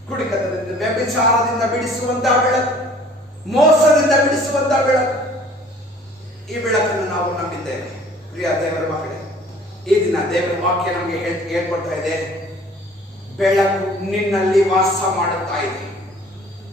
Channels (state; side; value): normal; both; correlation 0.52